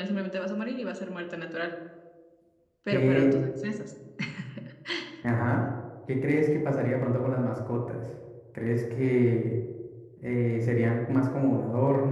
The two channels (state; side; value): identical; both; correlation 1.00